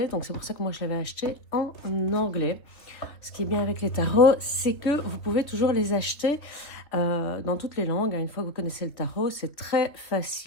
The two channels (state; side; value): late; right; 3.1 ms